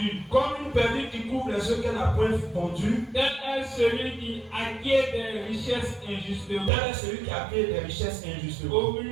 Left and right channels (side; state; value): left; drops out; at 6.7 s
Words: Comme une perdrix qui couvre les œufs qu'elle n'a point pondus, Tel est celui qui acquiert des richesses injustement. tel est celui qui a fait des richesses injustement. Au